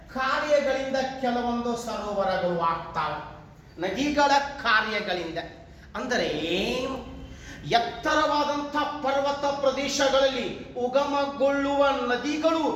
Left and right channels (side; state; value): both; identical; correlation 1.00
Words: ಕಾರ್ಯಗಳಿಂದ ಕೆಲವೊಂದು ಸರೋವರಗಳು ಆಗ್ತಾವೆ. ನದಿಗಳ ಕಾರ್ಯಗಳಿಂದ ಅಂದರೆ ಎತ್ತರವಾದಂಥ ಪರ್ವತ ಪ್ರದೇಶಗಳಲ್ಲಿ ಉಗಮಗೊಳ್ಳುವ ನದಿಗಳು